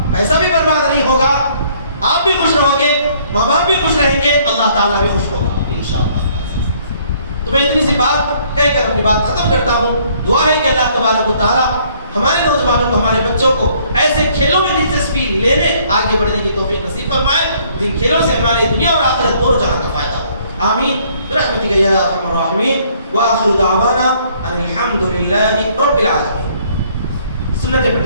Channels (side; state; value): both; inverted; correlation -0.63